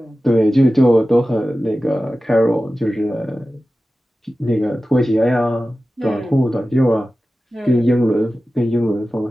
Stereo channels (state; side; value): normal; both; correlation 0.95